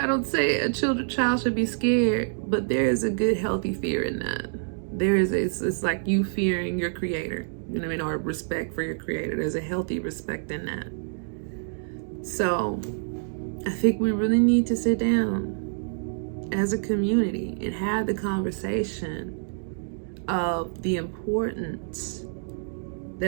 don't say a child should be scared, but there is a good, healthy fear in that. It's like you fearing your creator, you know what I mean, or respect for your creator. There's a healthy respect in that. So I think we really need to sit down as a community and have the conversation of the importance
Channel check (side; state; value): left; silent; digital silence